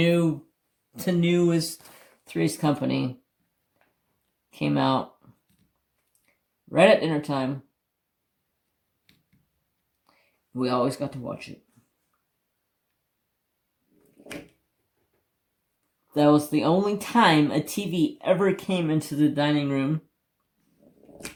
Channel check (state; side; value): identical; both; correlation 1.00